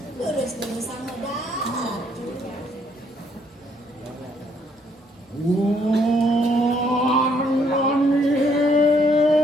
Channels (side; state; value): both; normal; correlation 0.68